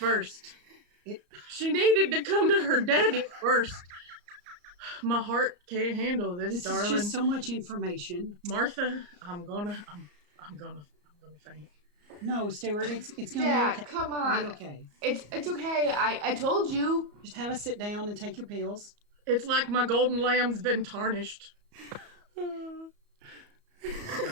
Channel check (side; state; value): left; late; 34 ms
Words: it. She needed to come to her daddy first. My heart can't handle this, This darling. is just so much information. Martha, I'm gonna faint. No, Stewart, it's gonna Dad, be okay. come It'll on. be okay. It's okay. I told you. Just have a sit down and take your pills. It's like my golden lamb's been tarnished. She